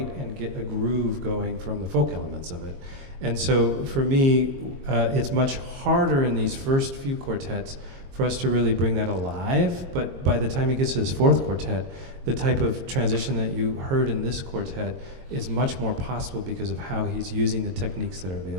and get a groove going from the folk elements of it. And so for me, it's much harder in these first few quartets for us to really bring that alive, but by the time he gets to his 4th quartet, the type of transition that you heard in this quartet is much more possible because of how he's using the techniques that are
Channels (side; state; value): left; late; 22 ms